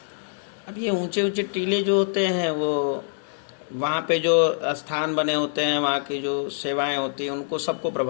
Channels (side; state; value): right; silent; digital silence